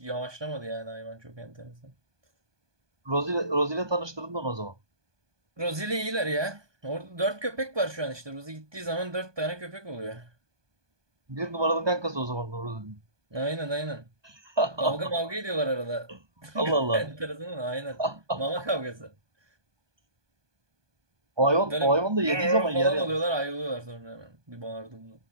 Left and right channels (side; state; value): left; late; 1.2 ms